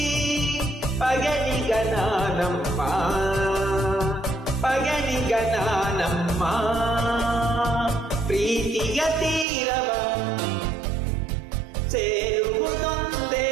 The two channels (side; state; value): left; drops out; at 9.5 s